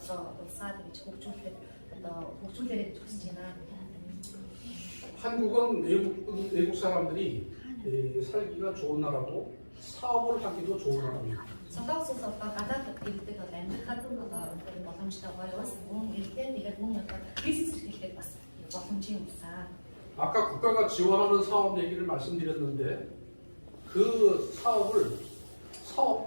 улсаа гэж хөгжүүлэхэд одоо хөгжүүлээрэй гэж хүсэж байна. 한국은 외국 사람들이 살기가 좋은 나라고 사업을 하기도 좋은 나라입니다. Солонгос улс одоо гадаад иргэдэд бол амьдрахад одоо боломжтой гоё улс, мөн иргэдэд тэгээд мөн одоо бизнес эрхлэхэд бас боломжийн улсаа. 아까 국가가 지원하는 사업 얘기를 말씀드렸는데 그 사업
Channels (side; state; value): both; inverted; correlation -1.00